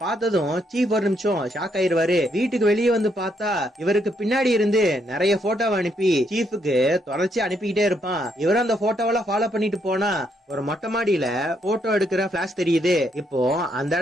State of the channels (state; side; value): normal; both; correlation 0.75